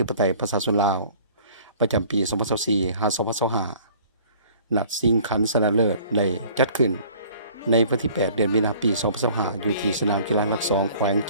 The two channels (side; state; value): both; inverted; correlation -0.51